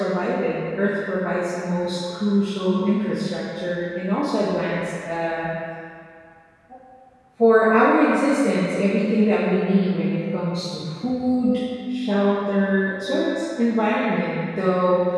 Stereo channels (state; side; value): identical; both; correlation 1.00